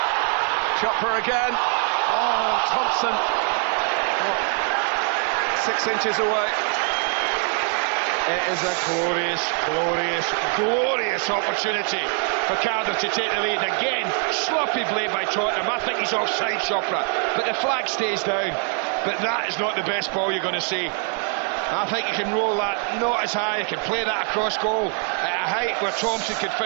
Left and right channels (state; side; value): quieter; left; 38.8 dB